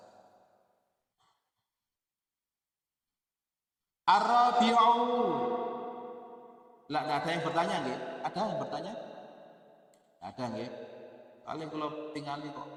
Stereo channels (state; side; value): identical; both; correlation 1.00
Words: Ar-rabi'u. Lah ada yang bertanya nggih? Ada yang bertanya? Ada nggih? Paling kalau tingali kok